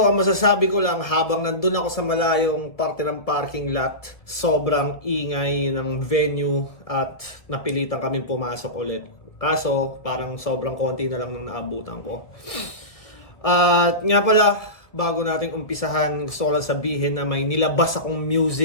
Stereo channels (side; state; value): right; late; 1.7 ms